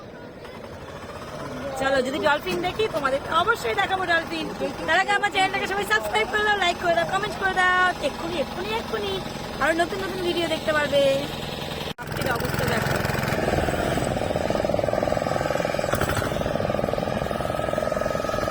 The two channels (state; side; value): identical; both; correlation 1.00